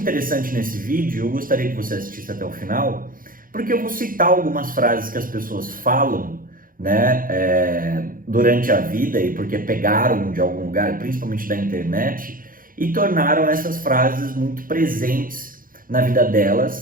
interessante nesse vídeo, eu gostaria que você assistisse até o final, porque eu vou citar algumas frases que as pessoas falam, né, durante a vida e porque pegaram de algum lugar, principalmente da internet, e tornaram essas frases muito presentes na vida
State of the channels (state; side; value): late; left; 0.41 ms